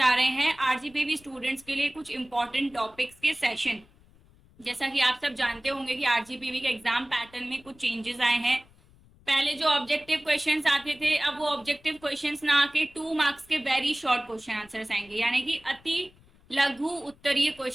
रहे हैं आरजीपीवी स्टूडेंट्स के लिए कुछ इंपॉर्टेंट टॉपिक्स के सेशन। जैसा कि आप सब जानते होंगे कि आरजीपीवी के एग्जाम पैटर्न में कुछ चेंजेस आए हैं। पहले जो ऑब्जेक्टिव क्वेश्चंस आते थे, अब वो ऑब्जेक्टिव क्वेश्चंस ना आके 2 मार्क्स के वेरी शॉर्ट क्वेश्चन आंसर्स आएंगे, यानी कि अति लघु उत्तरीय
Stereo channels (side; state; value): left; noise; rumble, 28 dB below the sound